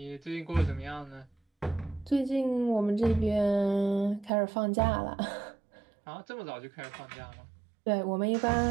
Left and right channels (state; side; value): drops out; left; at 4.3 s